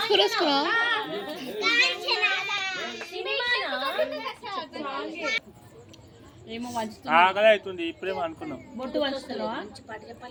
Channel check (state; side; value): identical; both; correlation 1.00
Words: వేసుకున్నావు ఏమో వంచుతుంది. ఆకలి అవుతుంది ఇప్పుడేమో అనుకున్నాం. బొట్టు వంచుతున్నావా?